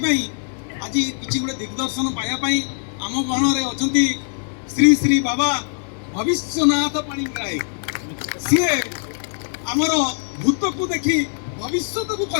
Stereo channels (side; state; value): right; silent; digital silence